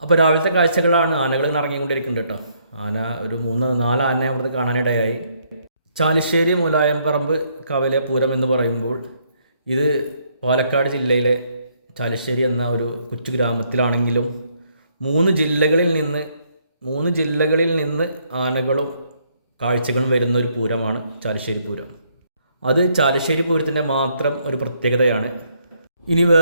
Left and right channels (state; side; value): inverted; both; correlation -0.70